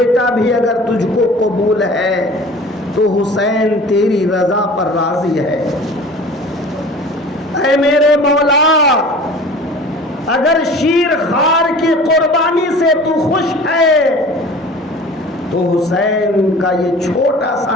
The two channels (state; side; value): normal; both; correlation 0.42